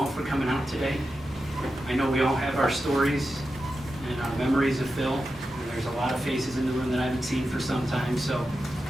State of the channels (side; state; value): both; normal; correlation 0.90